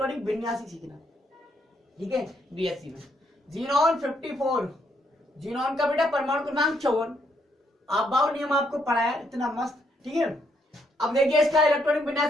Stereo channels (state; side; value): normal; both; correlation 0.74